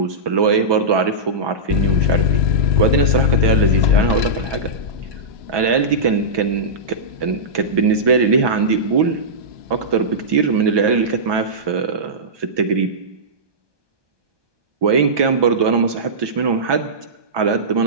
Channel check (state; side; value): late; left; 1.2 ms